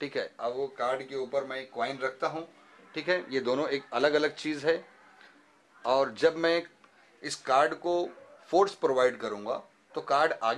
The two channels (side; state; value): both; identical; correlation 1.00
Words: ठीक है। अब वो कार्ड के ऊपर मैं एक कॉइन रखता हूँ, ठीक है। ये दोनों एक अलग अलग चीज़ है। और जब मैं इस कार्ड को फोर्स प्रोवाइड करूँगा तो कार्ड